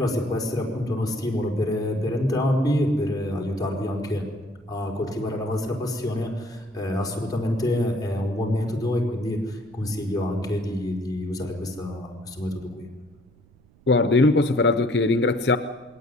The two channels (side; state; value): right; noise; rumble, 28 dB below the sound